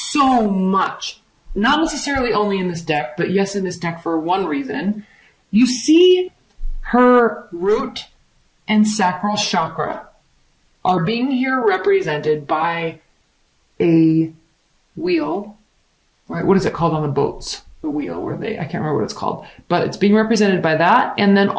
much. Not necessarily only in this deck, but yes, in this deck for one reason. You see her root and sacral chakra are being here represented by a wheel, right? What is it called on the boats? The wheel where I can't remember what it's called, but it's being represented by that. And then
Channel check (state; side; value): identical; both; correlation 1.00